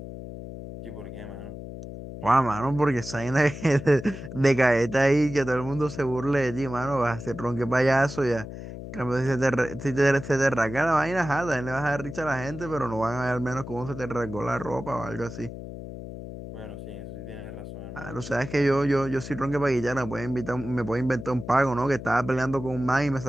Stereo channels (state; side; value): noise; left; hum, 11 dB below the sound